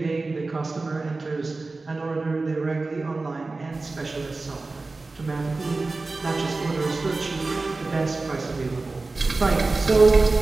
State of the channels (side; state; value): left; quieter; 3.5 dB